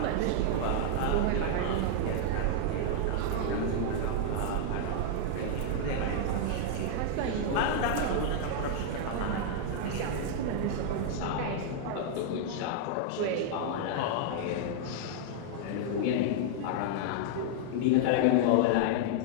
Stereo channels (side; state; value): both; different; correlation -0.01